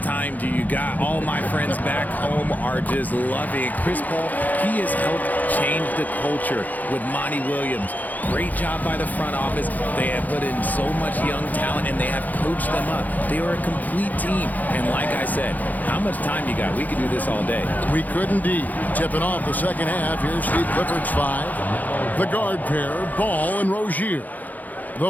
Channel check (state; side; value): late; right; 0.081 ms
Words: do you got? All my friends back home are just loving it. Chris Paul, he has helped change the culture with Monty Williams. Great job by the front office. They have put in so much young talent, and they have coached them up. They are a complete team. And like I said, how much time you got? We could do this all day. We could indeed. Tipping off the second half, here's Steve Clifford's 5. The guard pair, Ball and Rozier.